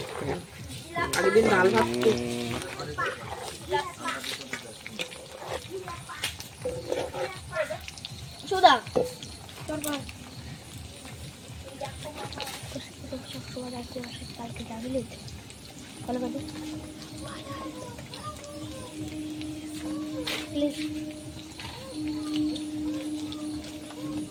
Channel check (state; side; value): identical; both; correlation 1.00